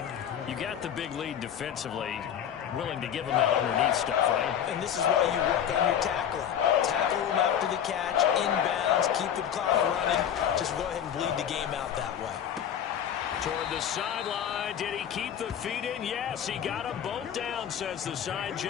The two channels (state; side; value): quieter; right; 9.3 dB